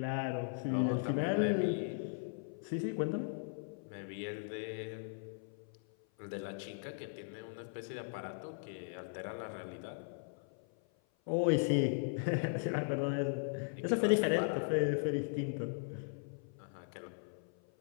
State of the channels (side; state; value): right; silent; 52 dB below the other